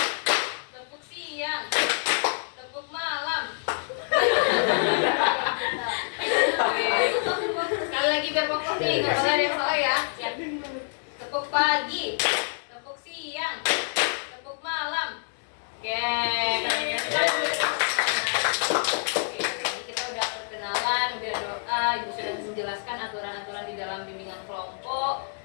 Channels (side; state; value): right; silent; digital silence